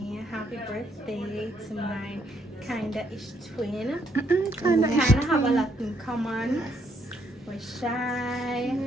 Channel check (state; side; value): normal; both; correlation 0.72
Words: happy birthday to my kinda-ish twin. We kinda have a lot in common. We're shy.